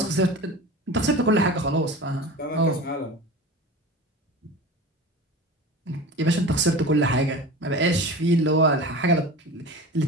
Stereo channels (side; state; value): both; normal; correlation 0.33